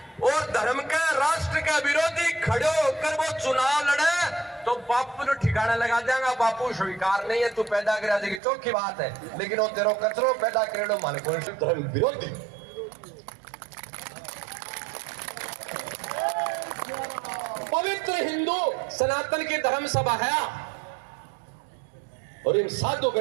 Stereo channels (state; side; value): drops out; left; at 8.4 s